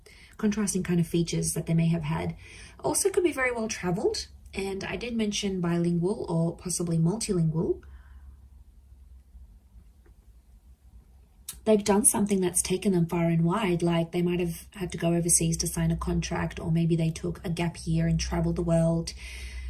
features that they may have had. Also could be very well traveled, and I did mention bilingual or possibly multilingual. They've done something that's taken them far and wide, like they might have had to go overseas to sign a contract, or maybe they took a gap year and traveled the world.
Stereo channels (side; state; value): both; identical; correlation 1.00